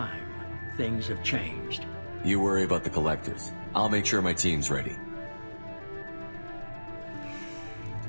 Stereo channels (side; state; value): both; inverted; correlation -1.00